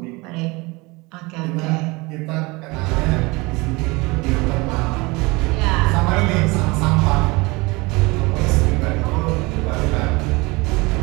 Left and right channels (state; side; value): quieter; left; 24.6 dB